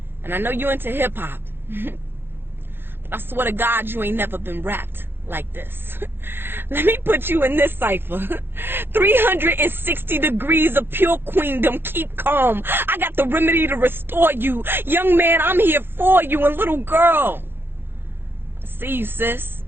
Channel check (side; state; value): left; late; 0.10 ms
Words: And I know you into hip-hop. But I swear to God, you ain't never been rapped like this. Let me put you in this cipher. 360 degrees of pure queendom. Keep calm. I got the remedy to restore you. Young man, I'm here for you. And little girl, I see you, sis.